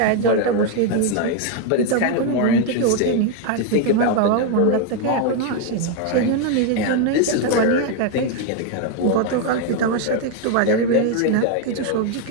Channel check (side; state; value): both; different; correlation 0.01